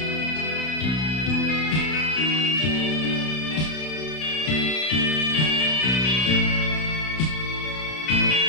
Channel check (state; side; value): late; right; 32 ms